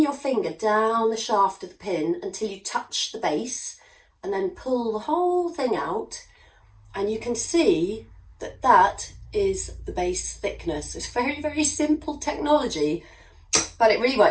your finger down the shaft of the pin until you touch the base, and then pull the whole thing out, and you can see that that is the base thickness. It's very, very simple technology, but it really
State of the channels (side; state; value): both; identical; correlation 1.00